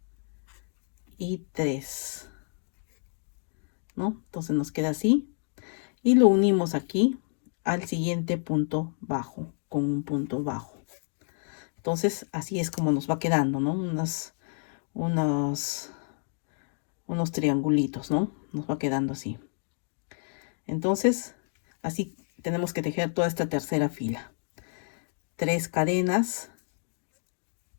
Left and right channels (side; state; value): right; silent; 58 dB below the other